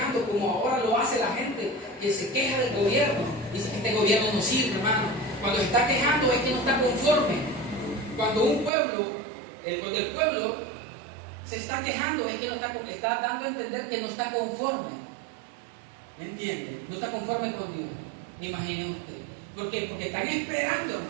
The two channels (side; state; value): left; drops out; at 8.7 s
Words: como ahora lo hace la gente que se queja del gobierno? Dice que este gobierno no sirve, hermano. Cuando se está quejando es que no está conforme. Cuando el pueblo se está quejando es que no está dando a entender que no está conforme. ¿Me entiende? No está conforme con Dios. Imaginen usted. ¿Por qué? Porque están esperando,